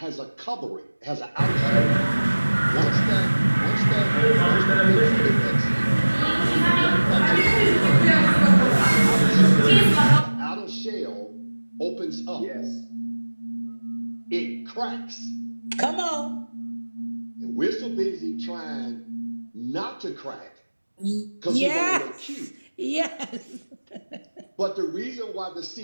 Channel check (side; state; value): both; inverted; correlation -1.00